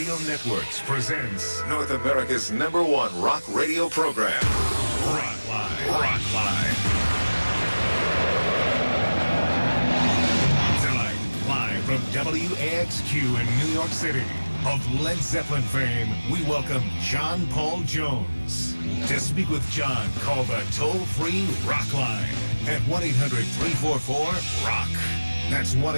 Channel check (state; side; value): inverted; both; correlation -0.99